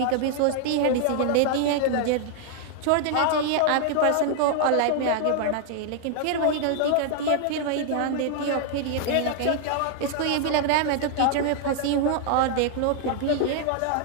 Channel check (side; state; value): both; different; correlation 0.00